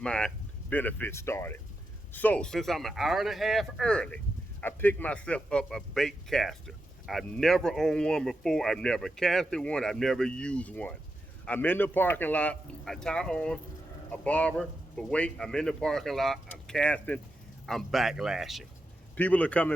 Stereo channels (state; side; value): normal; both; correlation 0.87